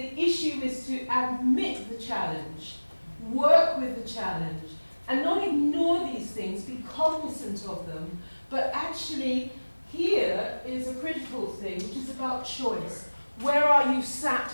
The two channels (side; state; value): both; inverted; correlation -1.00